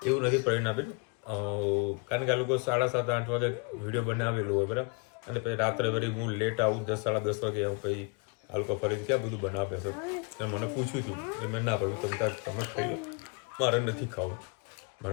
એવું નથી પરિણાબેન. કારણ કે આ લોકો 7:30-8 વાગે વિડીયો બનાવેલું હોય, બરાબર. અને પછી રાત્રે વળી હું લેટ આવું 10-10:30 વાગે આવું, પછી આ લોકો ફરીથી ક્યાં બધું બનાવે છે. એટલે મને પૂછ્યું હતું, એટલે મેં ના પડ્યું તમે ખાઈ લો, મારે નથી ખાવું.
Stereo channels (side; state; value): right; quieter; 33.2 dB